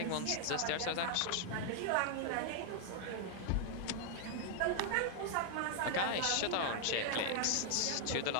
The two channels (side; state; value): both; different; correlation 0.00